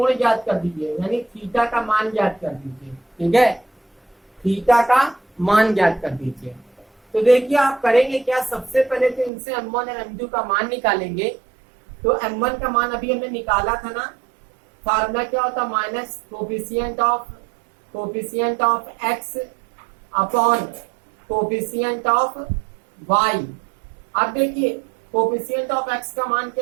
ज्ञात कर दीजिए, यानी थीटा का मान ज्ञात कर दीजिए, ठीक है, थीटा का मान ज्ञात कर दीजिए। तो देखिए आप करेंगे क्या, सबसे पहले तो इनसे m1 और m2 का मान निकालेंगे। तो m1 का मान अभी हमने निकाला था ना, फार्मूला क्या होता minus coefficient of x upon coefficient of y। अब देखिए कोफिशिएंट ऑफ x का मान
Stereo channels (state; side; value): drops out; left; at 9.3 s